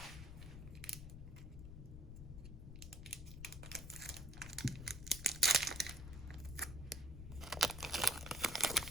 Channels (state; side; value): noise; left; rumble, 10 dB below the sound